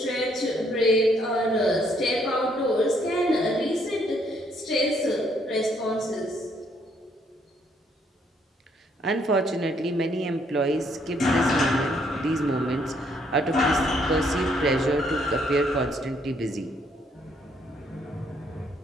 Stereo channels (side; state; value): both; normal; correlation 0.69